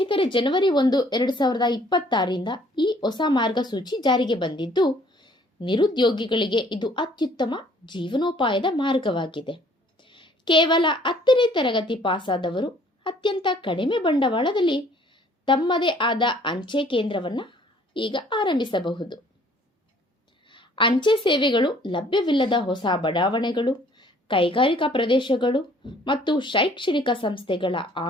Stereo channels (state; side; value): normal; both; correlation 0.58